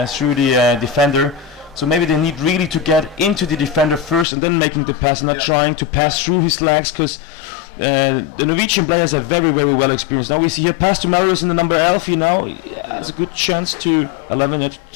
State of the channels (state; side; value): drops out; right; at 4.2 s